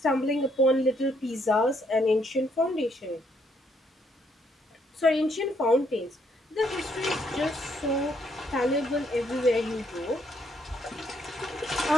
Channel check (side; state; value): both; normal; correlation 0.72